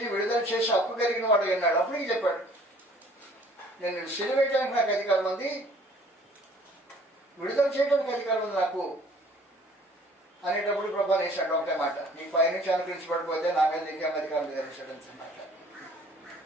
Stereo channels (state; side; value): normal; both; correlation 0.55